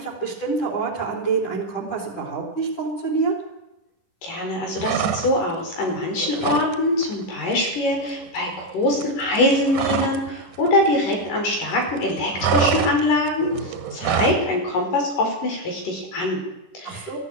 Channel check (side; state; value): right; late; 10 ms